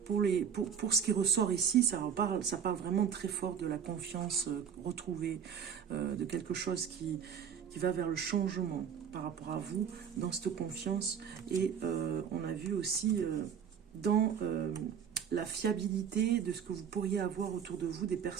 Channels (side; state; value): left; quieter; 7.7 dB